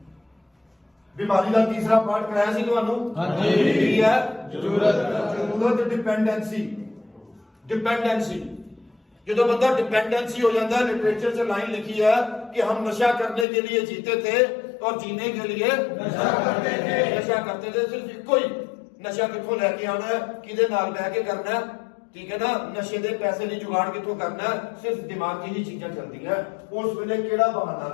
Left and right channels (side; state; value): right; drops out; at 13.5 s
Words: ਬਿਮਾਰੀ ਦਾ ਤੀਸਰਾ ਪਾਰਟ ਕਰਾਇਆ ਸੀ ਤੁਹਾਨੂੰ, ਹਾਂਜੀ ਕੀ ਹੈ ਜ਼ਰੂਰਤ, ਡਿਪੈਂਡੈਂਸੀ। ਡਿਪੈਂਡੈਂसी, ਜਦੋਂ बंदा डिपेंडेंसी हो जाता है, लिटरेचर से लाइन लिखी है कि हम नशा करने के लिए जीते थे और जीने के लिए नशा करते थे। सिर्फ इको ही नशा कितों लैके आना है, किदे नाल बह के करना है, ठीक है ना। नशे दे पैसे नहीं जुगाड़ कितों करना है, सिर्फ दिमाग की ही चीजें चलती है। उस वेले केड़ा बहाना